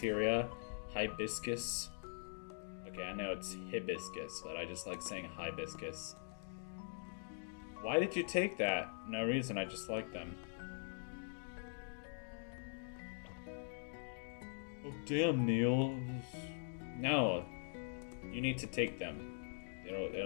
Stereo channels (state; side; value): silent; right; digital silence